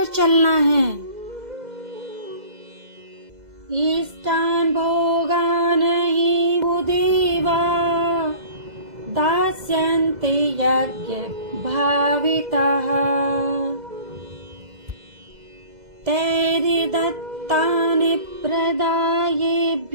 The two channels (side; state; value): left; late; 2.0 ms